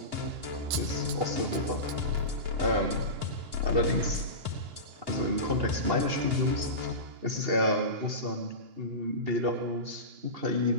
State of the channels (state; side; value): late; left; 2.9 ms